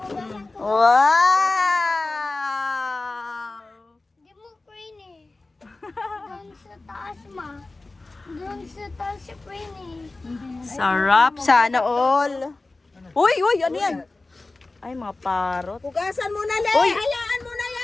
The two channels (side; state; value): right; quieter; 3.3 dB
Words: Wow! Di mo crane eh. Doon sa taas ma. Doon sa taas si crane eh. Sarap. Sana all. Uy, ano yan? Ay, mga parot. Hugasan mo na, Le. Uy! Hayaan mo na